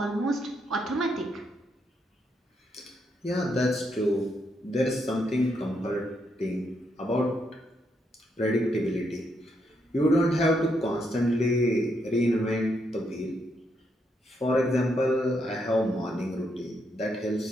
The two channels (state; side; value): normal; both; correlation 0.78